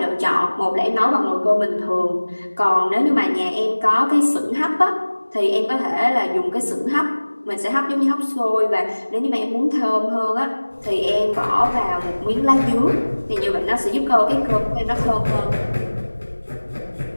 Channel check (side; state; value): both; inverted; correlation -1.00